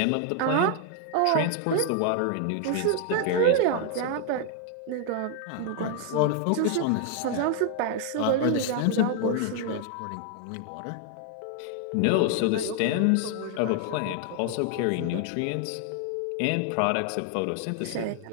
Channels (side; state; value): both; different; correlation 0.00